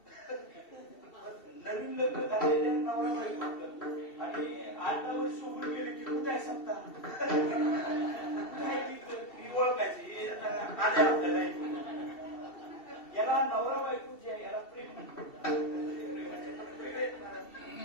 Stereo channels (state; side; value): late; right; 2.7 ms